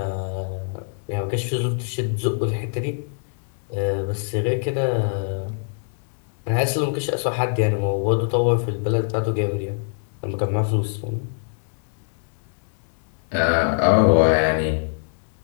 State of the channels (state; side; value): silent; right; 63 dB below the other